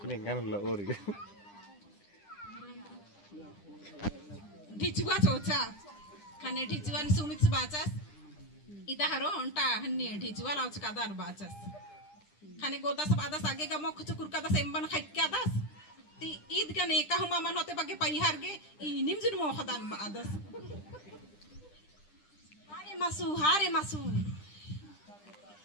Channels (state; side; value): late; right; 9.9 ms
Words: lah ori. ढिचुआ चोचा खाने ढिचुआन सुमित बाचास इता हरो उनटा हन्नी ढिचुआ लाउच कादार बाचास खाने गोदास बादास आगे का मोख चुकुर कादास एम्बन खाइक्या दास ती ईद का नेका हुमा मन होते बागे पैहार गे इनिम जुन मोखदान बादास हारे मासू